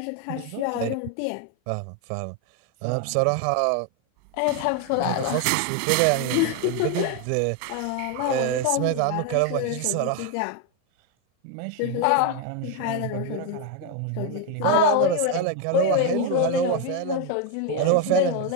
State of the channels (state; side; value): different; both; correlation 0.01